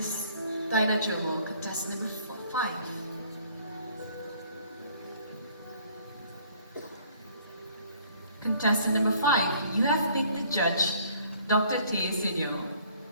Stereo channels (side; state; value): both; inverted; correlation -0.58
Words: Dinah Jomo, contestant number 5? Contestant number 5, you have picked the judge, Dr. Tay Sinyo.